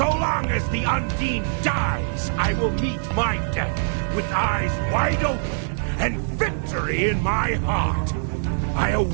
long as the Undine dies, I will meet my death with eyes wide open and victory in my heart. I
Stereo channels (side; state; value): left; silent; digital silence